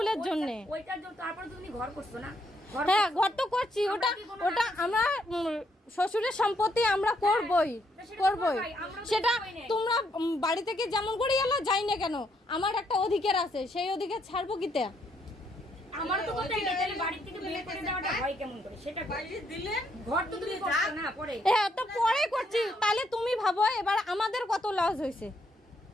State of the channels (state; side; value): normal; both; correlation 0.74